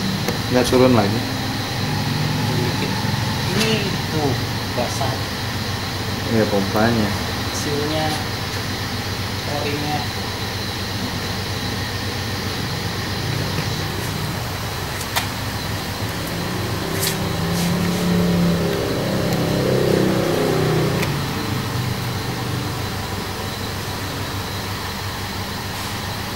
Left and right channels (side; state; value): both; identical; correlation 1.00